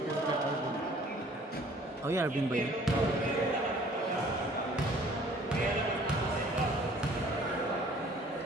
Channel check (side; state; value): both; normal; correlation 0.54